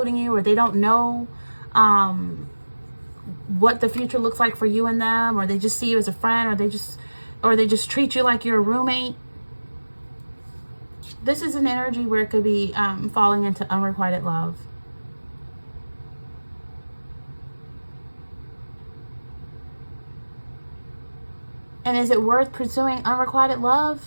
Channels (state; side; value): inverted; both; correlation -1.00